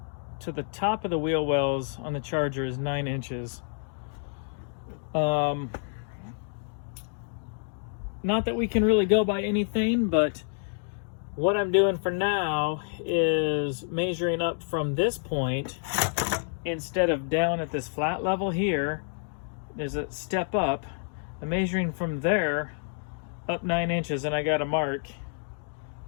to the top of the wheel wells on the Charger is 9 inches. Not that we can really go by anything, but what I'm doing for now is measuring up from this point. Instead of down at this flat level here, there's a step up. I'm measuring from there up 9 inches, and I got a mark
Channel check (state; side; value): silent; right; digital silence